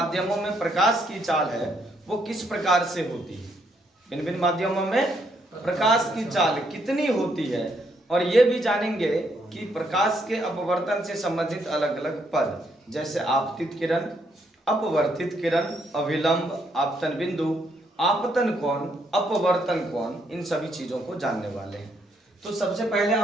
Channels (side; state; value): both; normal; correlation 0.73